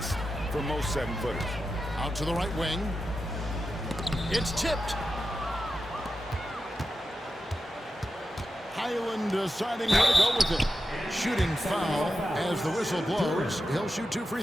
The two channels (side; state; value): both; normal; correlation 0.90